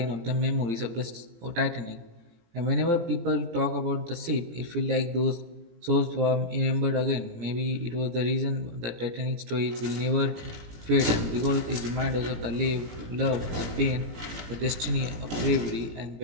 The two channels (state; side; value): late; left; 17 ms